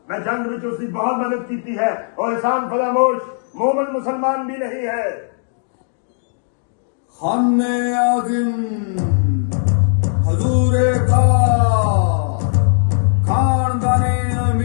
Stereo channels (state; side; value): silent; right; digital silence